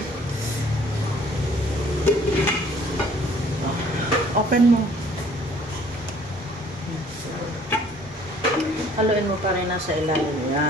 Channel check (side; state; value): both; normal; correlation 0.57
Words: Open mo. Haluin mo pa rin nasa ilalim.